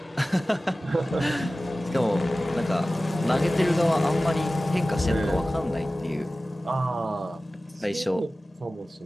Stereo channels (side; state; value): both; normal; correlation 0.96